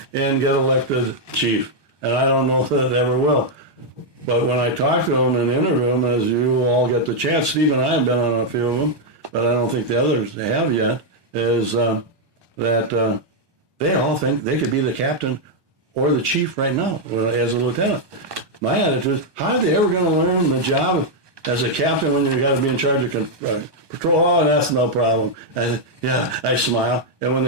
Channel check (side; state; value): left; late; 1.2 ms